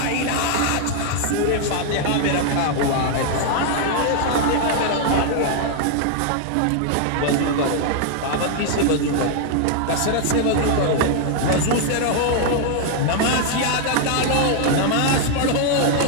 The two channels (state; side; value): different; both; correlation 0.00